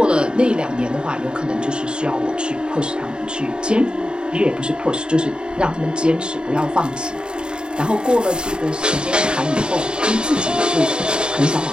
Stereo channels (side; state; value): left; late; 0.049 ms